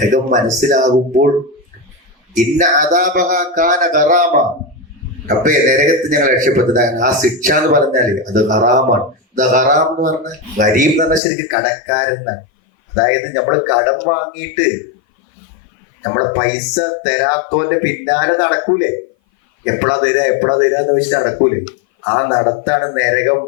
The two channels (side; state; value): right; drops out; at 11.2 s